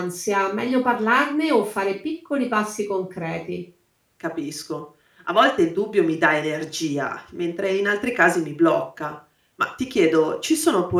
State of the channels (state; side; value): identical; both; correlation 1.00